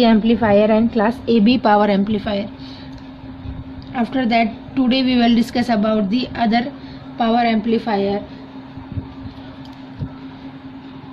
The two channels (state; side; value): identical; both; correlation 1.00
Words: amplifier and class AB power amplifier. After that, today we will discuss about the other power amplifier.